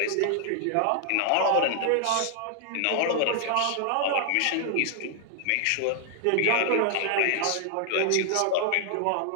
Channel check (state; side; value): different; both; correlation 0.00